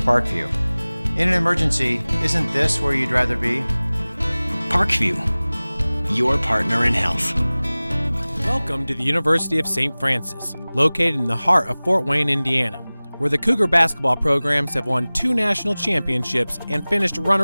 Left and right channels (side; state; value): both; inverted; correlation -0.99